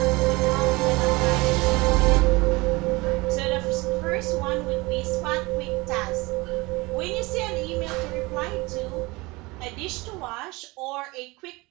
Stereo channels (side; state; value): left; quieter; 23.4 dB